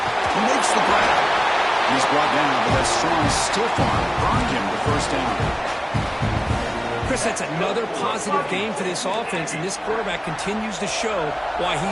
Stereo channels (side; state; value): both; identical; correlation 1.00